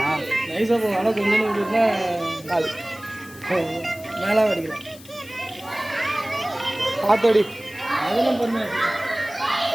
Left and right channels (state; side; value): noise; left; hiss, 20 dB below the sound